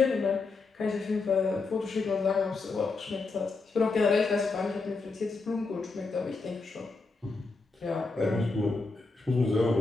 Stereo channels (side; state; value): right; quieter; 3.9 dB